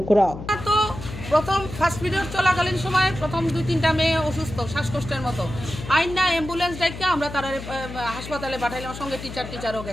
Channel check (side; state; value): left; noise; hum, 10 dB below the sound